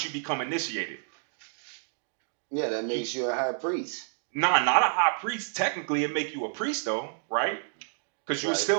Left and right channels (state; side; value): silent; left; digital silence